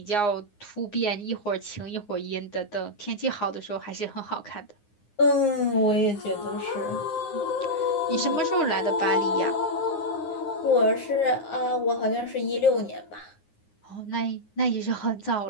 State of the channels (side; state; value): right; late; 9.7 ms